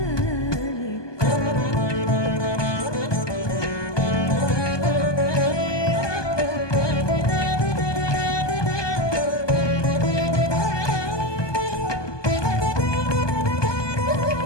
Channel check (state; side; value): late; right; 1.2 ms